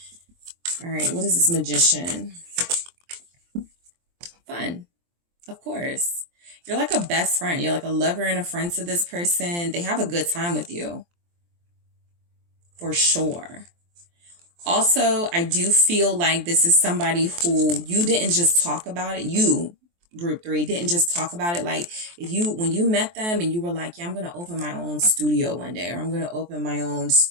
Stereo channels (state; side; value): late; left; 23 ms